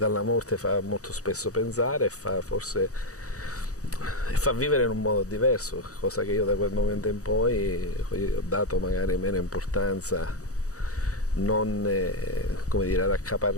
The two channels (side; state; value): right; late; 0.66 ms